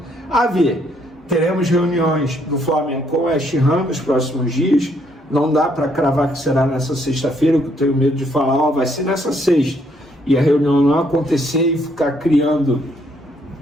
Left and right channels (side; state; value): both; normal; correlation 0.70